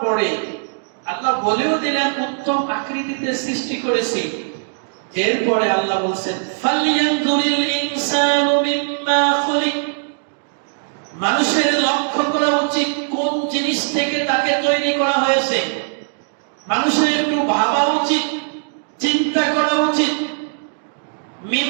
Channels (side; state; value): left; silent; digital silence